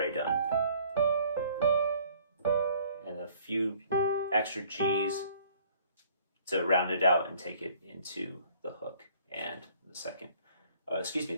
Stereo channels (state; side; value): inverted; both; correlation -0.57